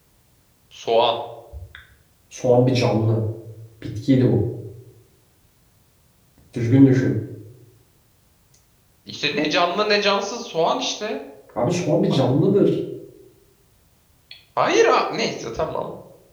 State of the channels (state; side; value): identical; both; correlation 1.00